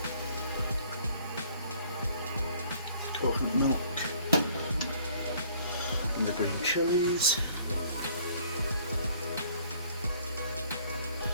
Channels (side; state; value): both; inverted; correlation -0.58